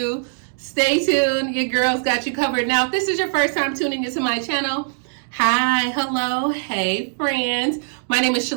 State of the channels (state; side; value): silent; left; digital silence